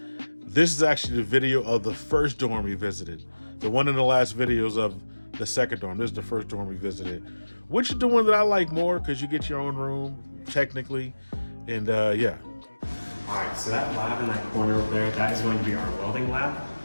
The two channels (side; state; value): both; inverted; correlation -1.00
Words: This is actually the video of the first dorm we visited. The one in the last videos of the second dorm. This is the first dorm we visited, which is the one that I like more because you get your own room technically, and yeah. All right, so that lab in that corner over there, that is going to be our welding lab.